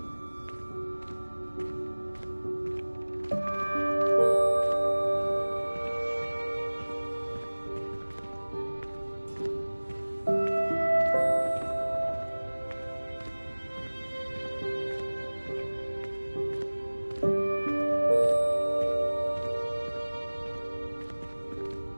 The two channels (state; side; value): inverted; both; correlation -1.00